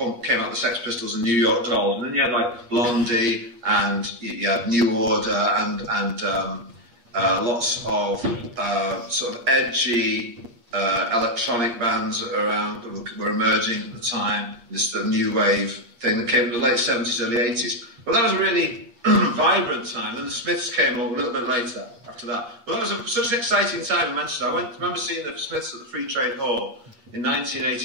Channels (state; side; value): late; left; 8.5 ms